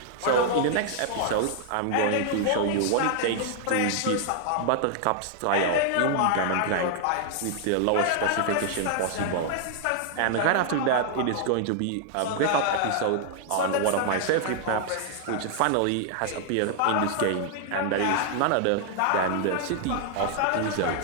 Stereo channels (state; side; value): different; both; correlation 0.00